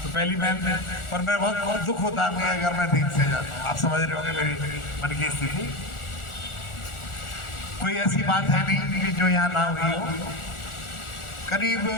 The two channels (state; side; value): late; right; 1.4 ms